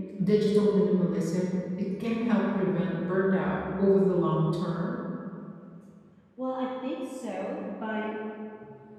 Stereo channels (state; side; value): identical; both; correlation 1.00